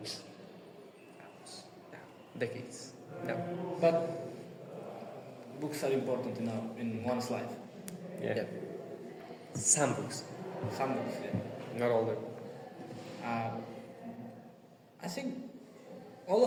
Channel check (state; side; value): identical; both; correlation 1.00